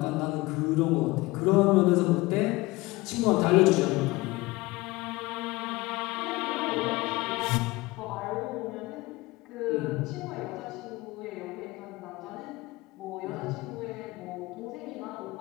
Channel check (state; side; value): quieter; right; 21.5 dB